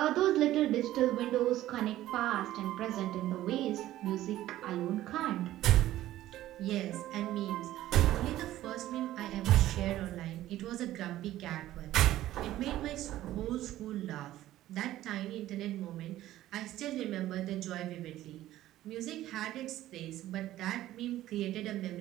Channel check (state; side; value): quieter; left; 14.4 dB